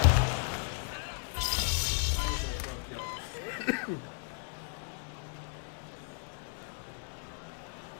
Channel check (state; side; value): silent; right; 55 dB below the other